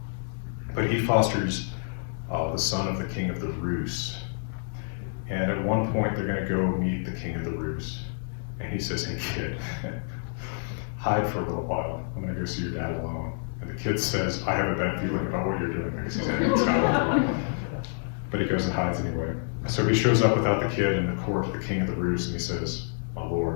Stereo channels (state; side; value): silent; right; digital silence